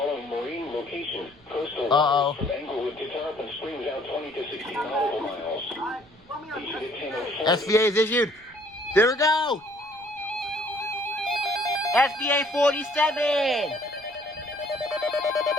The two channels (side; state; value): right; noise; rumble, 27 dB below the sound